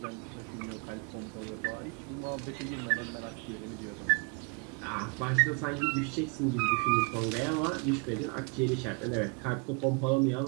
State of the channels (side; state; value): left; quieter; 35.8 dB